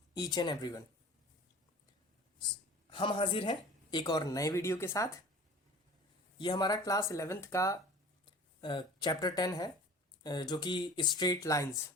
each and everyone. हम हाजिर हैं एक और नए वीडियो के साथ। ये हमारा क्लास 11th का चैप्टर 10 है, जो कि स्ट्रेट लाइंस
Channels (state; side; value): normal; both; correlation 0.42